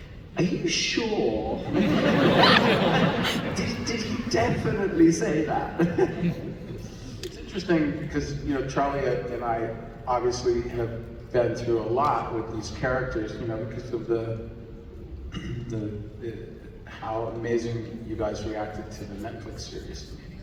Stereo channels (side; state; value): both; identical; correlation 1.00